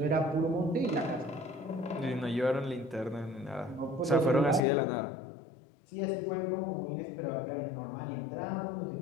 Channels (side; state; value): right; drops out; at 4.7 s